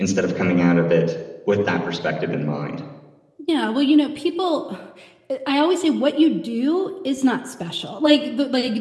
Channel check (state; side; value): identical; both; correlation 1.00